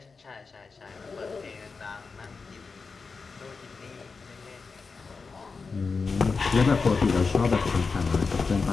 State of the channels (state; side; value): quieter; right; 4.7 dB